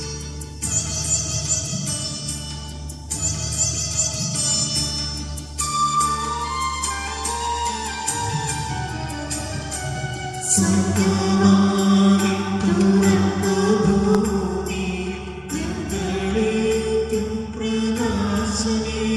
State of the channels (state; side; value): identical; both; correlation 1.00